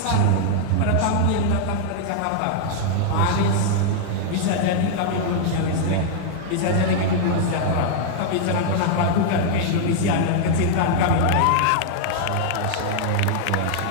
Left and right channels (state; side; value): different; both; correlation 0.00